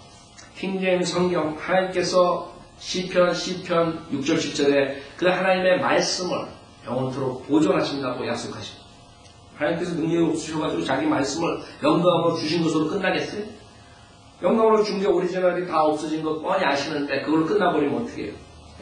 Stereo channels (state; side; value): identical; both; correlation 1.00